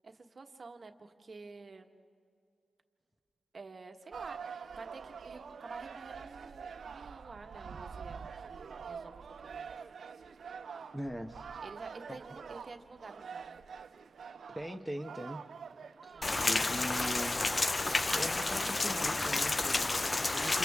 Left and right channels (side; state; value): both; normal; correlation 0.95